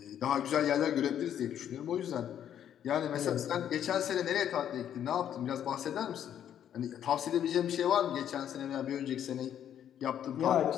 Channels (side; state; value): right; quieter; 9.9 dB